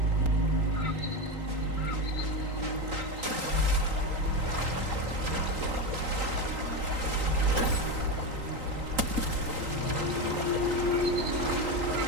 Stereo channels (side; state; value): left; late; 3.8 ms